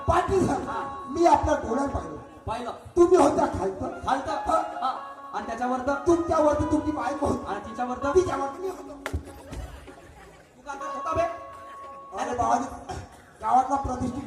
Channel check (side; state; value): both; identical; correlation 1.00